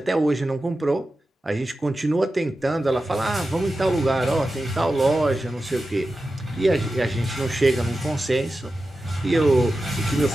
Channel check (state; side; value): normal; both; correlation 0.93